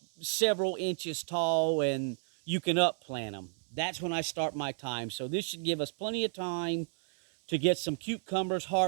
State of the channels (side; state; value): left; silent; digital silence